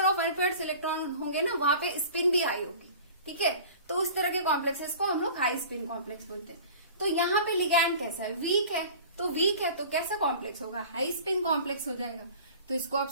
of unpaired electron होंगे ना, वहां पे स्पिन भी हाई होगी। ठीक है, तो उस तरह के कॉम्प्लेक्सेस को हम लोग हाई स्पिन कॉम्प्लेक्स बोलते हैं। तो यहाँ पे लिगैंड कैसा है, वीक है, तो वीक है तो कैसा कॉम्प्लेक्स होगा, हाई स्पिन कॉम्प्लेक्स हो जाएगा। तो इसको आप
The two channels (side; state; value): both; inverted; correlation -0.42